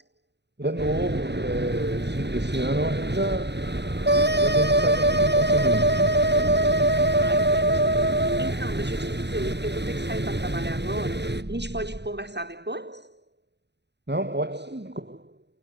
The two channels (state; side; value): late; left; 0.50 ms